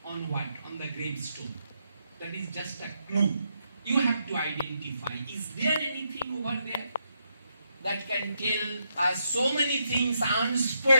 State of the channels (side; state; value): both; inverted; correlation -0.80